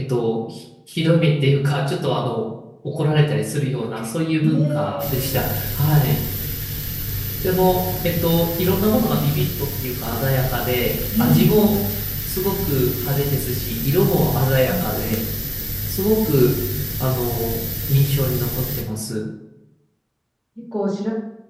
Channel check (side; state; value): both; identical; correlation 1.00